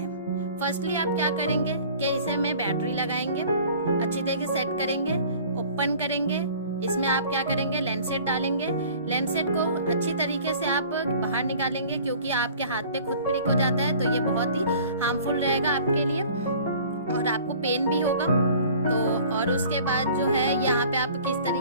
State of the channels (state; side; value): inverted; both; correlation -0.47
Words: फर्स्टली आप क्या करेंगे कि इसे में बैटरी लगाएंगे, अच्छी तरीके से सेट करेंगे, ओपन करेंगे, इसमें आप क्या करेंगे लेंसेट डालेंगे, लेंसेट को अच्छी तरीके से आप बाहर निकालेंगे क्योंकि आपके हाथ पे खुद प्रिक हो जाता है, तो ये बहुत ही हार्मफुल रहेगा आपके लिए और आपको पेन भी होगा। तो और उसके बाद जो है यहाँ पे आप किस